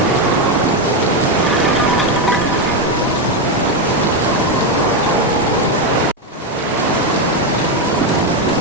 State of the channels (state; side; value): normal; both; correlation 0.08